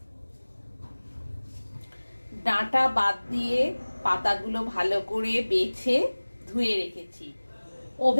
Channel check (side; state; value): both; inverted; correlation -1.00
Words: ডাঁটা বাদ দিয়ে পাতাগুলো ভালো করে বেছে ধুয়ে রেখেছি।